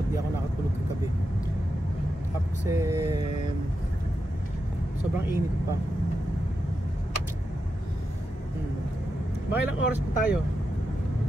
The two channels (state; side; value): normal; both; correlation 0.87